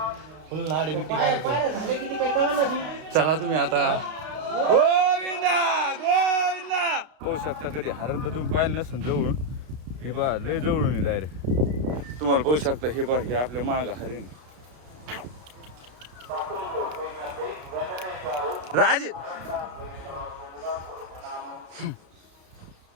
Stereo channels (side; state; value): left; late; 32 ms